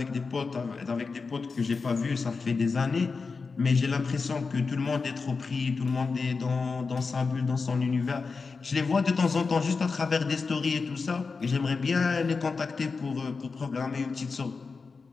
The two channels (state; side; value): quieter; right; 4.6 dB